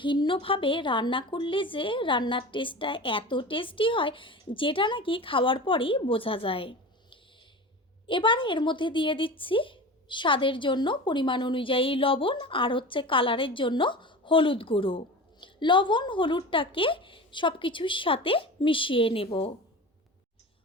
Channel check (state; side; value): normal; both; correlation 0.32